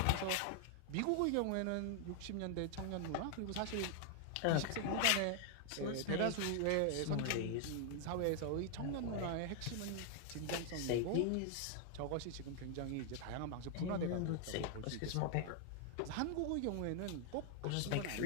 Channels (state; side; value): different; both; correlation 0.00